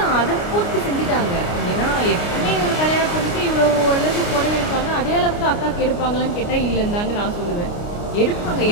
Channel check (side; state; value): right; late; 29 ms